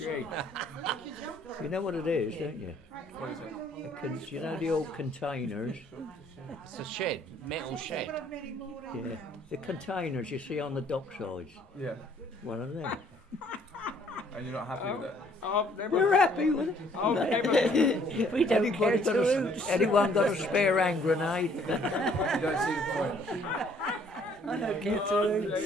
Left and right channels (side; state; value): both; normal; correlation 0.61